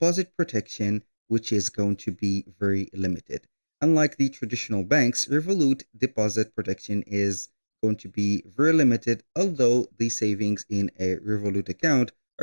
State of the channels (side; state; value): both; inverted; correlation -1.00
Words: protection, which is going to be very limited. Unlike the traditional banks, Revolut deposit protection is going to be very limited, although the savings in a Revolut account